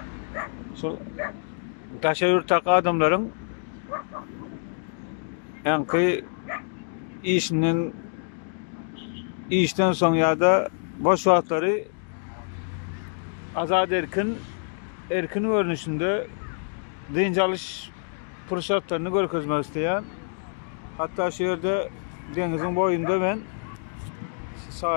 Taşayurt'taki adamların yankı işten son ya da boş vaatları azad erkin görünüşünde dinç alış fırsatlarını görkezmek isteyen, hatta şu yerde denizin boyunda ben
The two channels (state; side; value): silent; right; digital silence